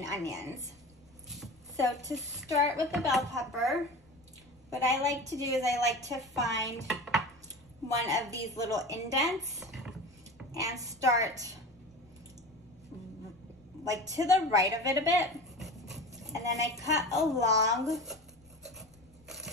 onions. So to start with the bell pepper, what I like to do is I like to find one of these little indents and start like to the right of it a bit. And then I cut along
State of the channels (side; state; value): left; noise; rumble, 29 dB below the sound